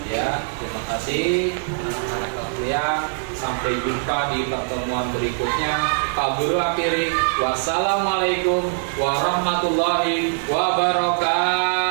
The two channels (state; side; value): silent; left; digital silence